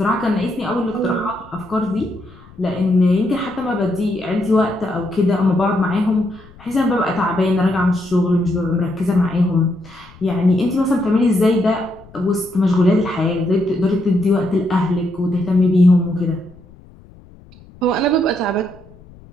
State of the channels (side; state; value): left; noise; rumble, 23 dB below the sound